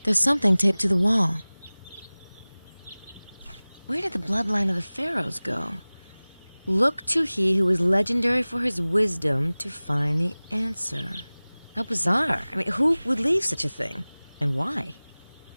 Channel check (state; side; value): inverted; both; correlation -1.00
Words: There's something taped to the wall. Where did the bloodline of the pharaohs go? Look to he who is legendary for his wisdom to find the answer. How bizarre. I mean, who would leave such a thing? And why?